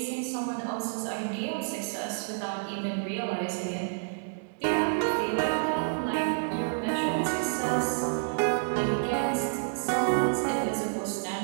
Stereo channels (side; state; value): left; silent; digital silence